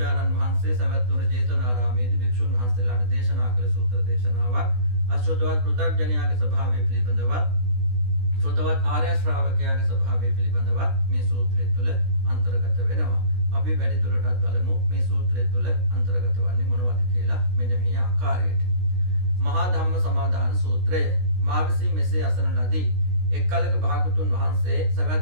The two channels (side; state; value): left; late; 16 ms